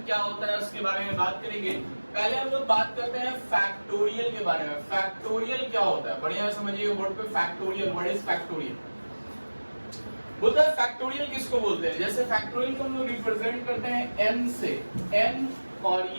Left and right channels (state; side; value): inverted; both; correlation -1.00